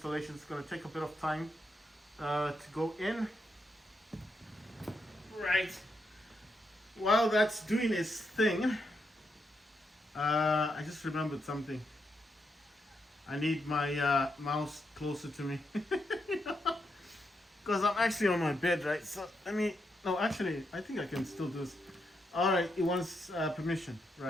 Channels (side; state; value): both; normal; correlation 0.81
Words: It's gonna take a bit of time to go in. Right. While that's doing its thing, I just remembered something. I need my mouse closer to me, because I'm actually on my bed, right? So I think I can still do this. All right, it wants permission,